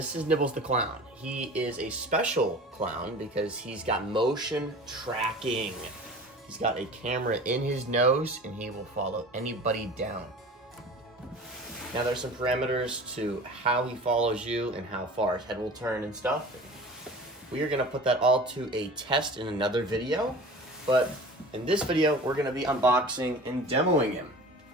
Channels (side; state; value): both; normal; correlation 0.39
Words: is Nibbles the Clown. He is a special clown because he's got motion tracking. He's got a camera in his nose and he will follow anybody down. Now there's some parameters to how he follows you and how far his head will turn and stuff. We are gonna put that all to a test in another video, but in this video, we're gonna be unboxing and demoing him.